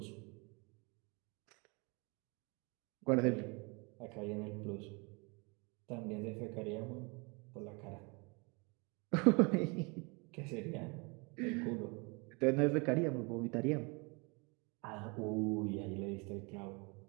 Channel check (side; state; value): left; quieter; 30.0 dB